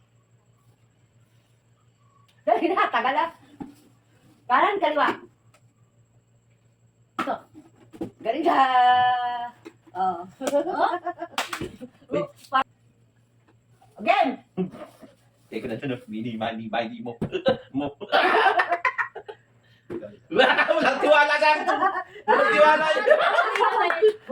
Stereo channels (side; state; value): both; identical; correlation 1.00